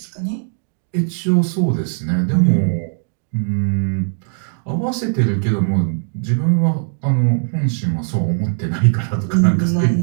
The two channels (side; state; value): left; silent; digital silence